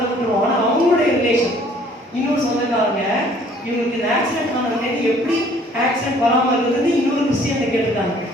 ஆனா அவங்களுடைய ரிலேஷன் இன்னொரு சொந்தக்காரங்க இவங்களுக்கு இந்த ஆக்சிடென்ட் ஆனது எப்படி ஆக்சிடென்ட் வராம இருந்தது இன்னொரு கிறிஸ்டியன் கேட்டிருக்காங்க.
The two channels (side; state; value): both; normal; correlation 0.57